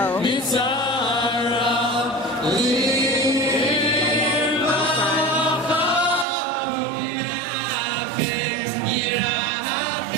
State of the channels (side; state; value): left; drops out; at 6.2 s